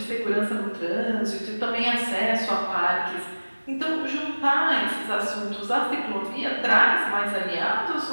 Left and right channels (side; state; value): both; inverted; correlation -1.00